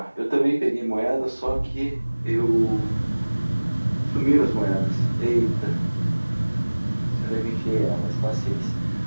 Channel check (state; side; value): inverted; both; correlation -1.00